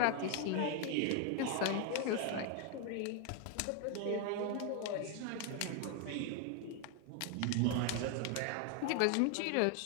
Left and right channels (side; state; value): both; different; correlation 0.01